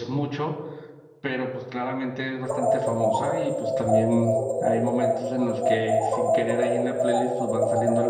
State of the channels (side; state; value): both; identical; correlation 1.00